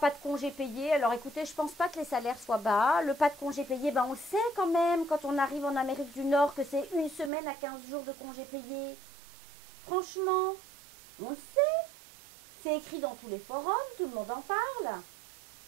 de congés payés. Alors écoutez, je pense pas que les salaires soient bas. Le pas de congés payés, ben, on le sait quand même quand on arrive en Amérique du Nord que c'est 1 semaine à 15 jours de congés payés. Franchement, on le sait. C'est écrit dans tous les forums, tout le monde en parle.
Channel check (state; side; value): drops out; left; at 7.3 s